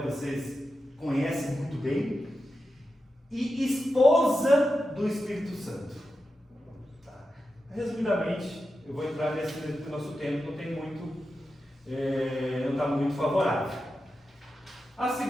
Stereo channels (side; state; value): both; normal; correlation 0.90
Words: vocês conhecem muito bem. e esposa do Espírito Santo. Tá. Resumidamente, eu vou entrar nesse, porque o nosso tempo não tem muito, não está muito favorável.